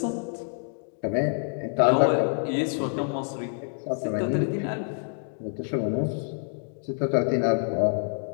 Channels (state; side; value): silent; right; 59 dB below the other